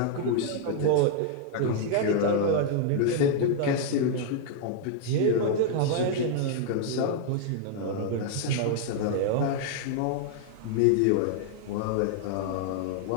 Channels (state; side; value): different; both; correlation -0.01